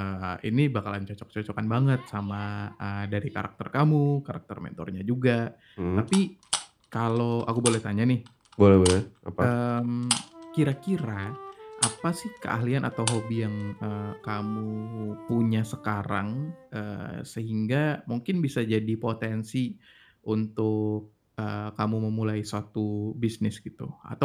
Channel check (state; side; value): identical; both; correlation 1.00